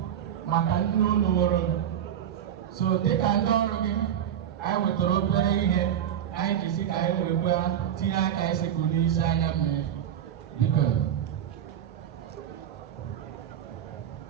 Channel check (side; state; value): left; quieter; 9.9 dB